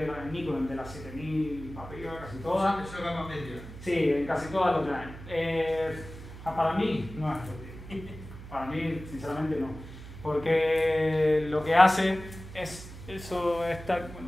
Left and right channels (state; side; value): noise; right; hum, 14 dB below the sound